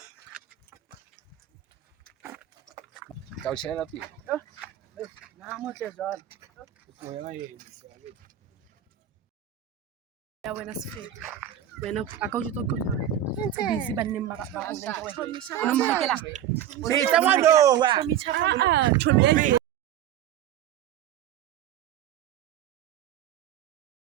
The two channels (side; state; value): left; quieter; 11.0 dB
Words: I'll share up here. Now, much as all. Ya wena sifete. Wena akawujitoka. Busy banning ba ba. Unomhekela. Hey, someone know. Chomi chaka. Chomi.